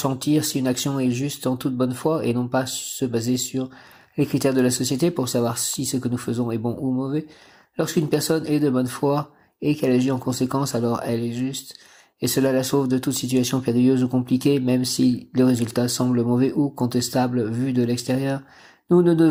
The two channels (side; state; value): both; identical; correlation 1.00